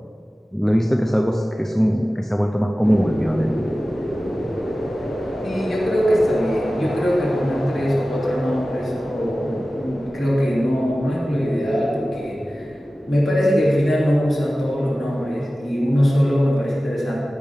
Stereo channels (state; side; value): normal; both; correlation 0.96